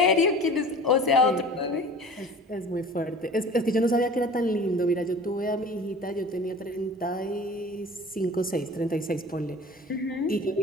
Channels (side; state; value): both; normal; correlation 0.41